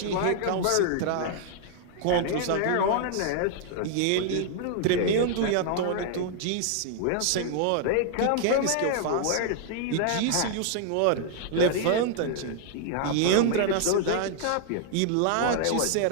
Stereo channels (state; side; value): different; both; correlation 0.00